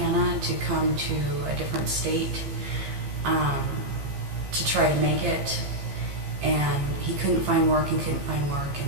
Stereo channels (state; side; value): late; left; 15 ms